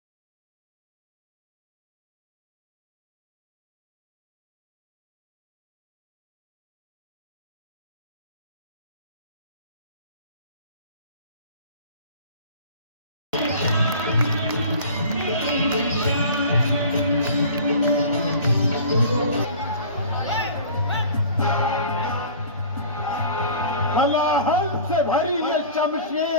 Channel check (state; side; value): inverted; both; correlation -0.42